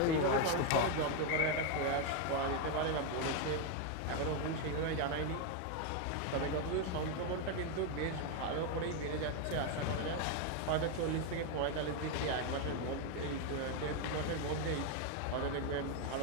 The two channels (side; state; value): both; different; correlation 0.01